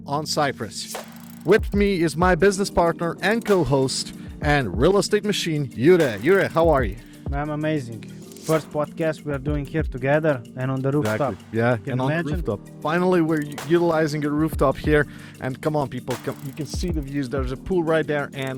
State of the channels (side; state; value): both; identical; correlation 1.00